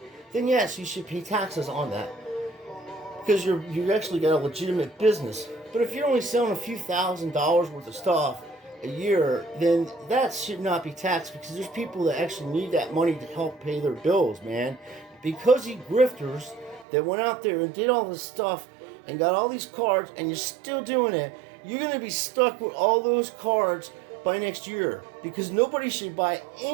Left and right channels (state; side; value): drops out; left; at 16.9 s